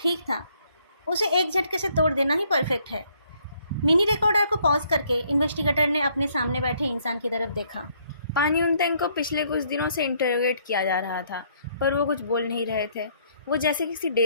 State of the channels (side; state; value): both; inverted; correlation -0.67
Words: था, उसे एक झटके से तोड़ देना ही परफेक्ट है। मिनी रिकॉर्डर को पॉज करके इन्वेस्टिगेटर ने अपने सामने बैठे इंसान की तरफ देखा। पानी उनतेंग को पिछले कुछ दिनों से इंटरोगेट किया जा रहा था, पर वो कुछ बोल नहीं रहे थे। वो जैसे किसी